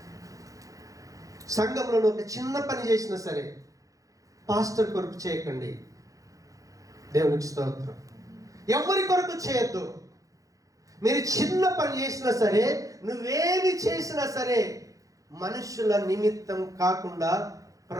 సంఘంలో ఒక చిన్న పని చేసినా సరే పాస్టర్ కొరకు చేయకండి. దేవునికి స్తోత్రం. ఎవరి కొరకు చేయొద్దు. మీరు చిన్న పని చేసినా సరే, నువ్వేమి చేసినా సరే మనుషుల నిమిత్తం కాకుండా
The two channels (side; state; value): left; late; 0.16 ms